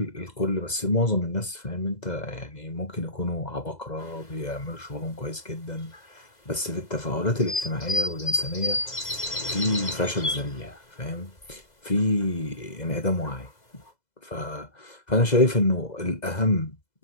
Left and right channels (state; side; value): late; right; 2.0 ms